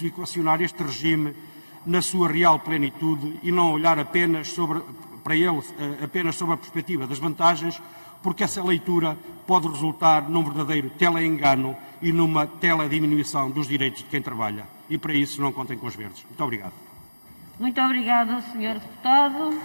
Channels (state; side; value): inverted; both; correlation -1.00